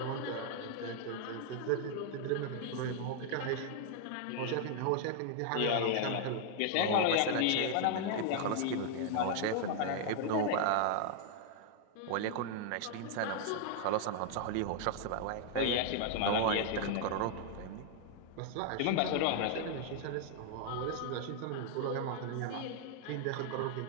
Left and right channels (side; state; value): both; different; correlation -0.01